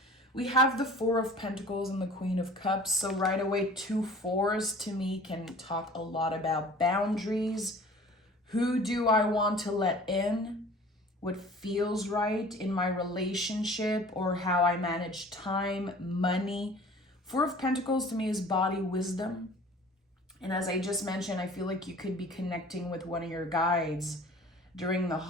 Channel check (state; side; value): normal; both; correlation 0.46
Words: We have the Four of Pentacles and the Queen of Cups. So right away, 2 fours to me can talk a lot about boundaries. Who do I want to let in? What feels right in my relationship, or how I manage time, money. Four of Pentacles to me is body wisdom. And as I just mentioned, I feel like you could be connecting with one of your guides during the